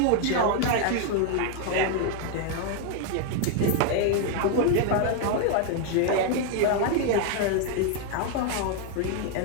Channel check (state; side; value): different; both; correlation 0.00